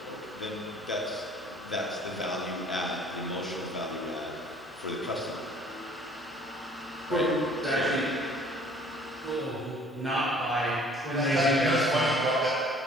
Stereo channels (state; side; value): normal; both; correlation 0.54